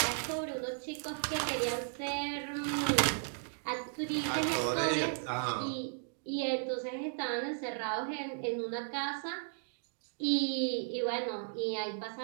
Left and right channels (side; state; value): left; silent; digital silence